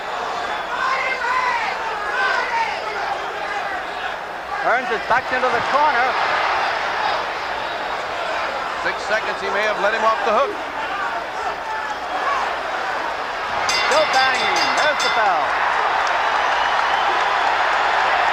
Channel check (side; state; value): both; identical; correlation 1.00